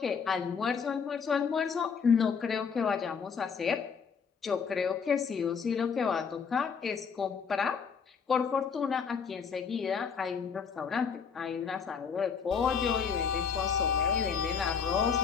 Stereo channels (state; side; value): quieter; right; 6.2 dB